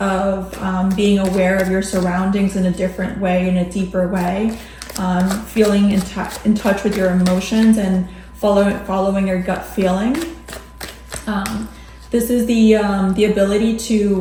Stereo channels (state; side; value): identical; both; correlation 1.00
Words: of being aware of your surroundings in a different way, in a deeper way, feeling in touch with your emotions and following your gut feeling. This is the ability